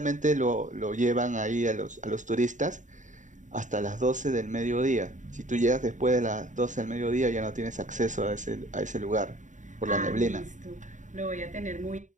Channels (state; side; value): late; left; 0.36 ms